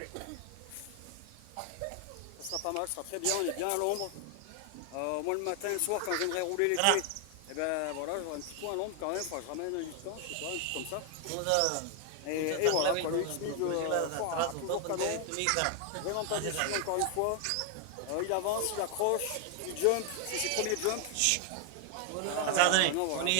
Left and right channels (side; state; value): both; different; correlation 0.00